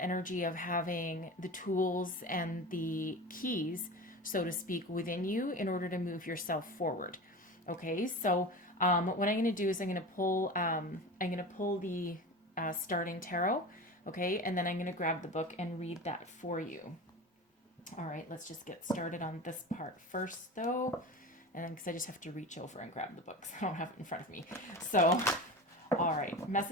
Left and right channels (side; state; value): both; normal; correlation 0.31